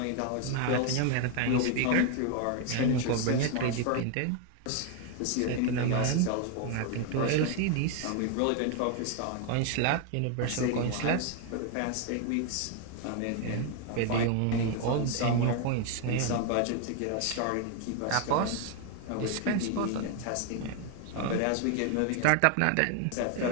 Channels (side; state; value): both; different; correlation 0.01